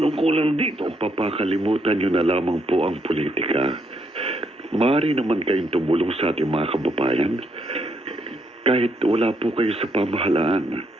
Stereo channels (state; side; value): normal; both; correlation 0.75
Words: dito. Papa, kalimutan nyo na lamang po ang politika. Maaari naman kayong tumulong sa ating mga kababayan. Kahit wala po kayo sa pamahalaan,